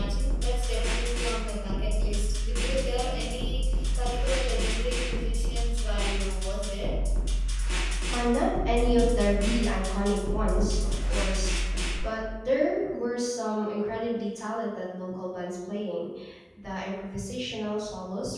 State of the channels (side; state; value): both; identical; correlation 1.00